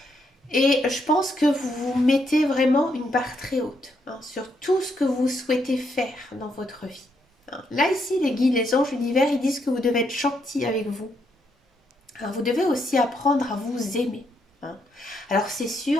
Et je pense que vous vous mettez vraiment une barre très haute hein, sur tout ce que vous souhaitez faire dans votre vie. Hein. Là, ici, les guides, les anges, l'univers, ils disent que vous devez être gentil avec vous. Alors, vous devez aussi apprendre à vous aimer. Hein. Alors, c'est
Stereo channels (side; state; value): both; normal; correlation 0.77